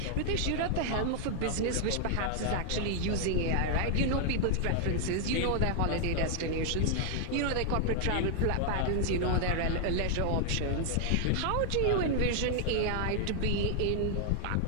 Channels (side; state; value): both; different; correlation 0.00